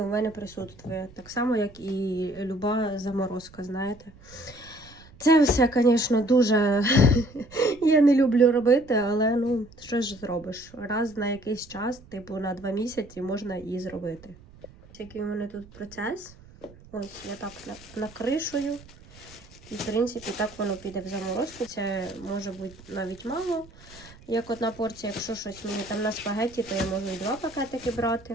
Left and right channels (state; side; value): noise; right; rumble, 22 dB below the sound